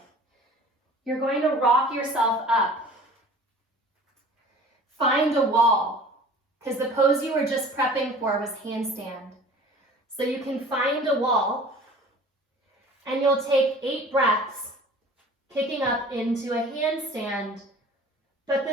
You're going to rock yourself up. Find a wall, because the pose you were just prepping for was handstand. So you can find a wall, and you'll take 8 breaths, kicking up into a handstand, but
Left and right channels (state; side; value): normal; both; correlation 0.45